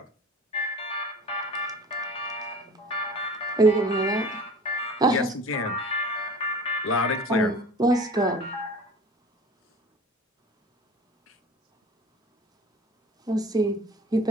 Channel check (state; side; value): normal; both; correlation 0.40